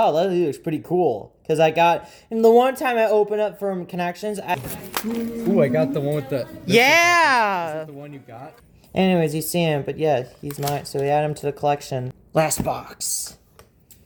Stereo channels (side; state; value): both; identical; correlation 1.00